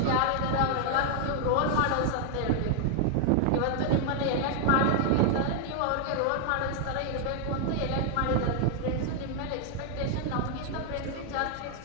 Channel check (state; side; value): different; both; correlation 0.00